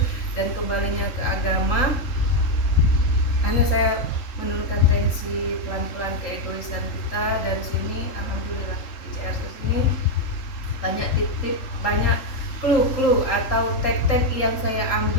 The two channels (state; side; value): late; right; 3.4 ms